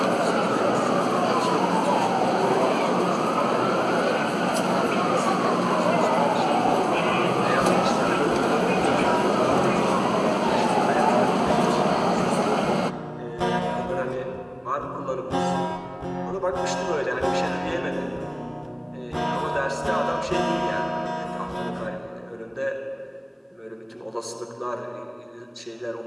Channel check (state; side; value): identical; both; correlation 1.00